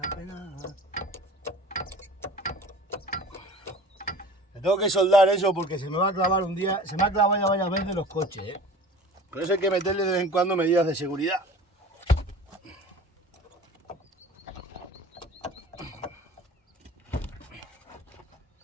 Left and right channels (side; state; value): both; normal; correlation 0.41